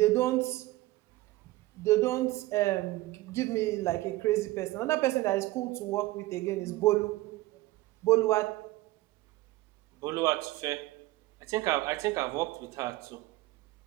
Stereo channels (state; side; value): quieter; left; 18.5 dB